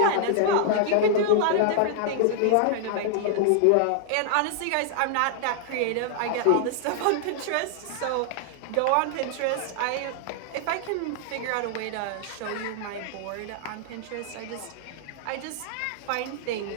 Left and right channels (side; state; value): both; different; correlation -0.01